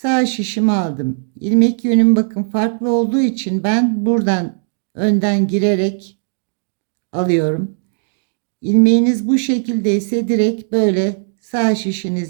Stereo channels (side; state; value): left; silent; digital silence